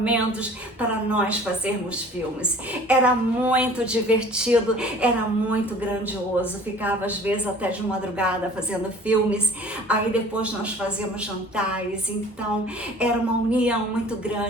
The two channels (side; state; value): both; normal; correlation 0.47